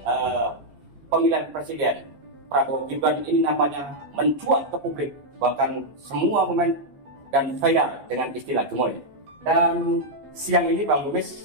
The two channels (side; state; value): left; late; 14 ms